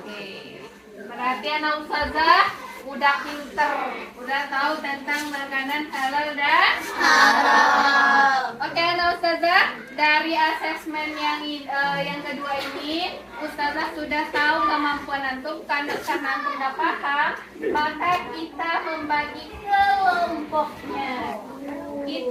Berarti anak ustazah udah pinter, udah tahu tentang makanan halal dan haram. Oke, anak ustazah, dari asesmen yang kedua ini, ustazah sudah tahu kemampuan antum. Karena antum sudah paham, maka kita membagi kelompoknya.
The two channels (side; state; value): both; identical; correlation 1.00